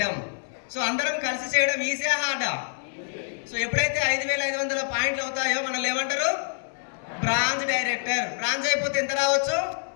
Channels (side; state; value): right; silent; 61 dB below the other